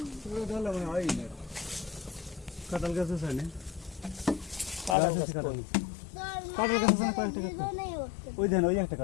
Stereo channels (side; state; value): right; drops out; at 5.0 s